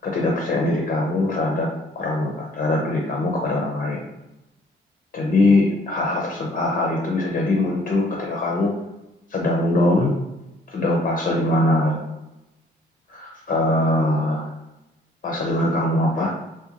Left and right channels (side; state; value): both; normal; correlation 0.60